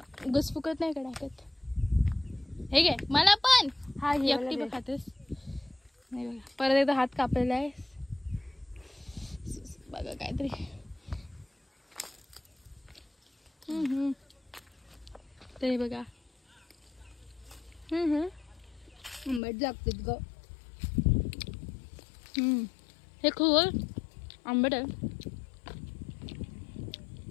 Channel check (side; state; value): right; drops out; at 19.4 s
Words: उगच फुकत नाही का टाकत. हे घे मला पण. हा, एकटी बघ खातेस. नाही बघा, परत एकदा हात कापलेला आहे बघा काहीतरी. तरी बघा आंबट लागतात ग. हे खूप आंबट आहे,